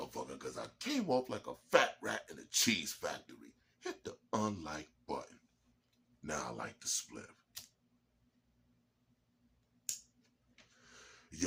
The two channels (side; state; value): both; identical; correlation 1.00